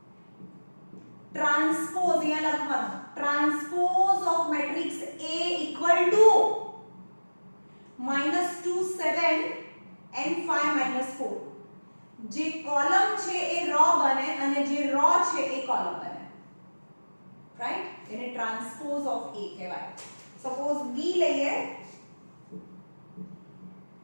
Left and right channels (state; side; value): inverted; both; correlation -1.00